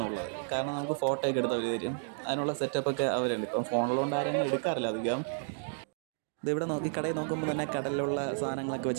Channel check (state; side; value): silent; left; digital silence